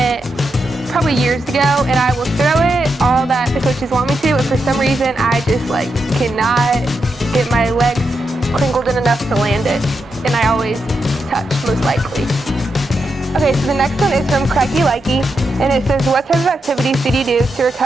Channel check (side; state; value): both; normal; correlation 0.85